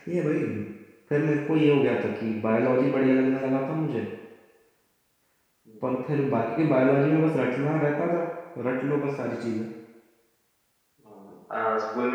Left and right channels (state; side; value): identical; both; correlation 1.00